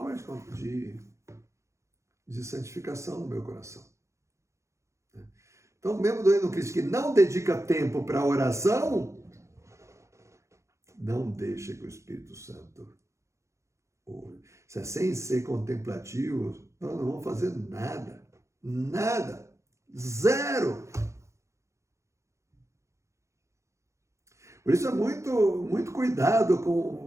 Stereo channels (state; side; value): late; left; 0.14 ms